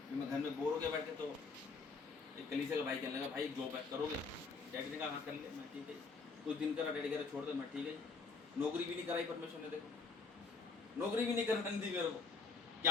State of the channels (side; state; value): right; quieter; 4.5 dB